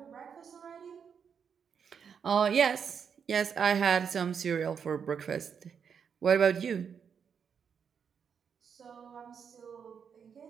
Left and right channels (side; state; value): left; quieter; 7.0 dB